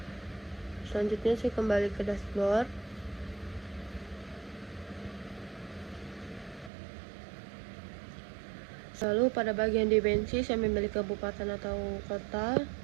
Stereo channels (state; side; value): drops out; left; at 6.7 s